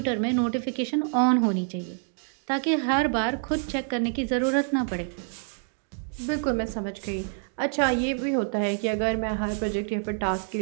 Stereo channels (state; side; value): silent; left; 60 dB below the other